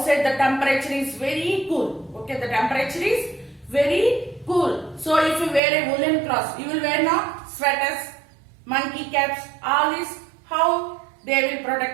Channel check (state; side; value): drops out; left; at 5.6 s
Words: the temperature is very cool. The temperature is very cool. So if you wear a woolen cloth, you will wear now sweaters, monkey caps, all this. How they will